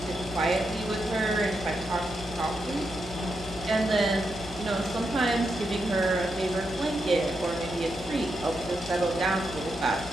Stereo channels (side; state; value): left; noise; hum, 16 dB below the sound